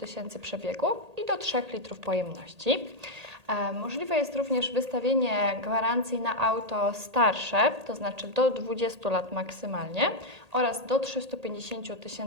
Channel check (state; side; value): late; left; 1.8 ms